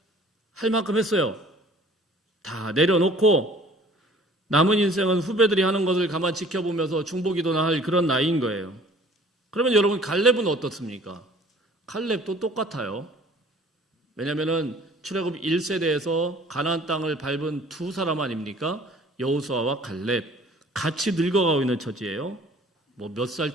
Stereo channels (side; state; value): both; normal; correlation 0.51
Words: 할 만큼 했어요. 다 내려놓고 남은 인생은 후배들이 하는 것을 가만 지켜보면서 중보기도나 할 그런 나이인 거예요. 그러면 여러분, 갈렙은 어떻습니까? 갈렙도 똑같아요. 왜냐하면 출애굽 1세대에서 가나안 땅을 밟은 두 사람 아닙니까? 여호수아와 갈렙. 같이 늙어가고 있는 처지예요. 뭐 몇 살